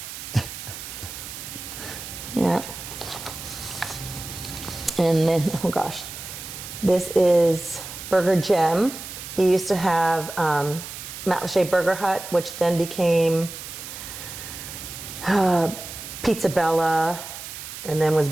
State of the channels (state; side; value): noise; right; hiss, 10 dB below the sound